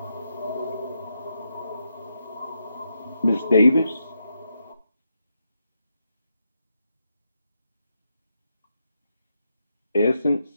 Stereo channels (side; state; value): both; inverted; correlation -0.82